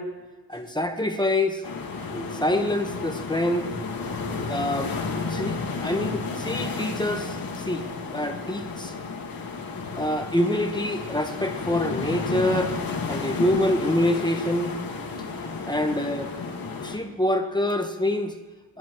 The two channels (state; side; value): normal; both; correlation 0.56